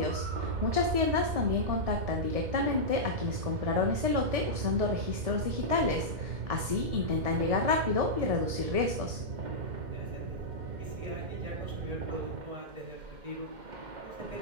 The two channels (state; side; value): late; left; 1.7 ms